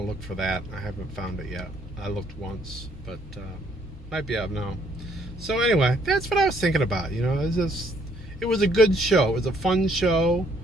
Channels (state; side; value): normal; both; correlation 0.66